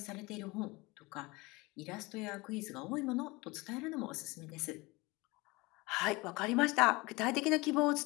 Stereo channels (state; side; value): quieter; right; 23.6 dB